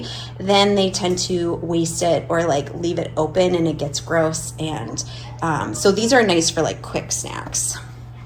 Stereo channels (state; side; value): identical; both; correlation 1.00